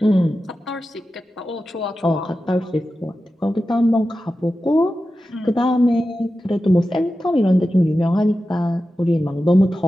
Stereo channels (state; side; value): normal; both; correlation 0.93